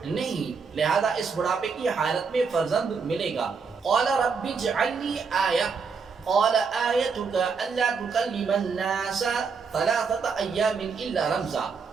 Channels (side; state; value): left; quieter; 5.4 dB